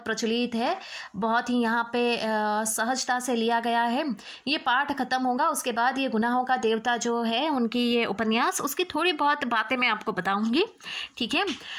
प्रचलित है, बहुत ही यहाँ पे सहजता से लिया गया है। ये पाठ खत्म होगा, उसके बाद ये गुनाहों का देवता जो है उनकी ये उपन्यास, उसकी थोड़ी बहुत बातें मैं आपको बताऊंगी। ठीक है,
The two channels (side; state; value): both; identical; correlation 1.00